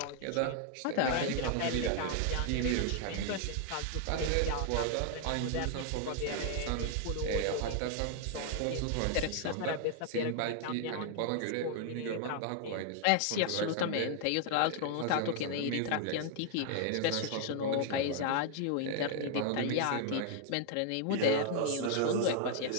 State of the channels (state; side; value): different; both; correlation 0.00